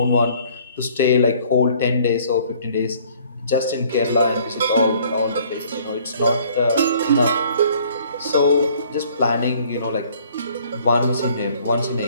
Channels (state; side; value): inverted; both; correlation -0.58